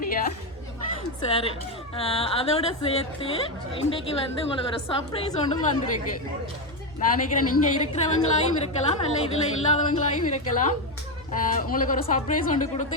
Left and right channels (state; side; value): normal; both; correlation 0.09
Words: சரி, அதோட சேர்த்து இன்றைக்கு வந்து உங்களுக்கு ஒரு சர்ப்ரைஸ் ஒன்றும் வந்திருக்கு. நான் நினைக்கிறேன் நீங்கள் இருக்கிறவங்களாயும் இருக்கலாம், இல்லை இதில் இல்லாதவங்களாயும் இருக்கலாம். உங்களுக்கு ஒரு சர்ப்ரைஸ் ஒன்று